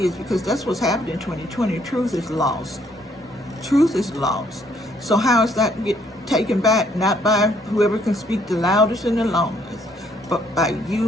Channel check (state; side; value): normal; both; correlation 0.67